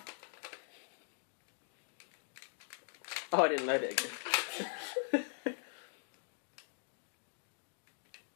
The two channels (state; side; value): silent; right; digital silence